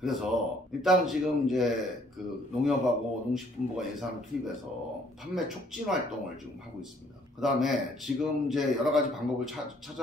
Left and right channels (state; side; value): normal; both; correlation 0.63